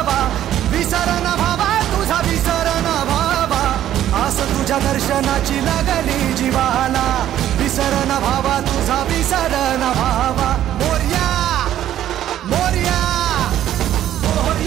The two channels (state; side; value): quieter; left; 11.9 dB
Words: विसर न भावा तुझा विसर न भावा. आस तुझ्या दर्शनाची लागली जीवाला, विसर न भावा तुझा विसर न भावा. मोरया मोरया